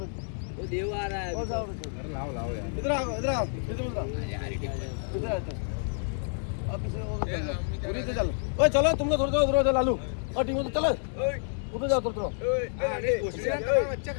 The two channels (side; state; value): right; silent; digital silence